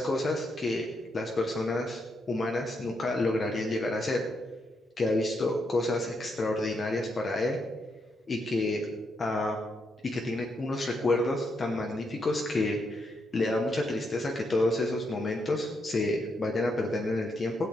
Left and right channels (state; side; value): normal; both; correlation 0.80